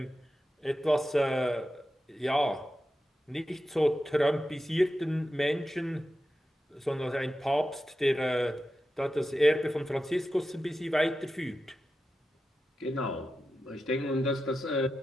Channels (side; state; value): both; normal; correlation 0.91